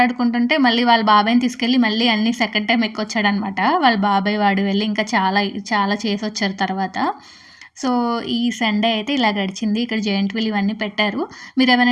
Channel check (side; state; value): both; identical; correlation 1.00